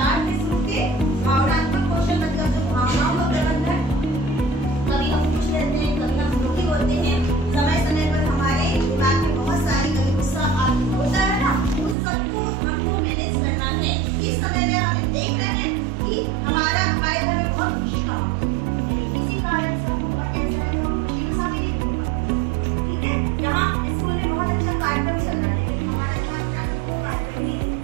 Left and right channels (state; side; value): drops out; left; at 12.0 s